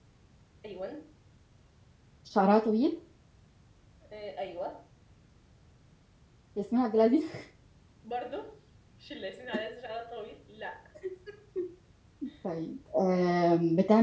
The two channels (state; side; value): identical; both; correlation 1.00